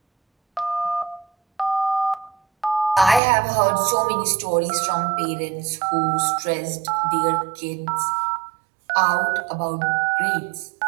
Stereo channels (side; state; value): left; drops out; at 3.2 s